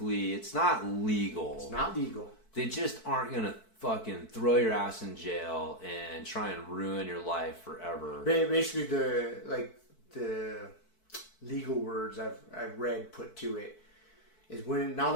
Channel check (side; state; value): right; late; 4.6 ms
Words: it's not legal. It's not legal. They just aren't going to fucking throw your ass in jail and try and ruin your life forever. Basically, the legal words I've read put to it is now